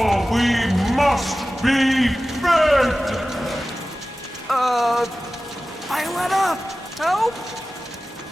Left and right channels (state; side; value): normal; both; correlation 0.96